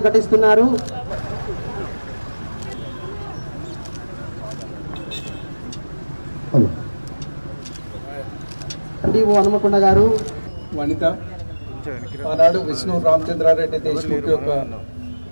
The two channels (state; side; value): inverted; both; correlation -1.00